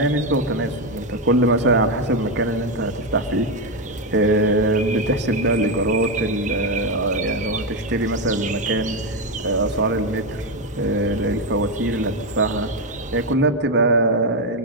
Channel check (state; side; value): normal; both; correlation 0.08